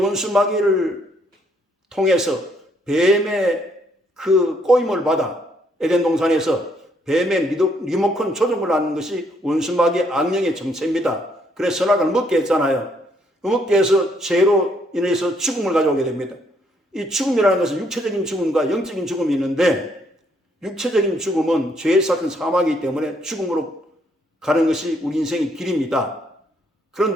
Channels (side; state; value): both; normal; correlation 0.70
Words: 마귀를 통해서 뱀의 그 꼬임을 받아 에덴 동산에서 뱀의 리모컨 조종을 하는 것이 원수 마귀의 악령의 정체입니다. 그래서 선악을 먹게 했잖아요. 먹게 해서 죄로 인해서 죽음을 가져오게 됩니다. 이 죽음이라는 것은 육체적인 죽음과 영적인 죽음이 있는데 육체적인 죽음은 죄의 삭은 사망이기 때문에 죽음으로 가는 것이 우리 인생의 길입니다.